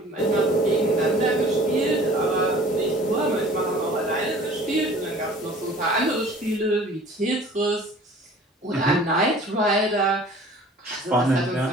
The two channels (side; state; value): both; normal; correlation 0.48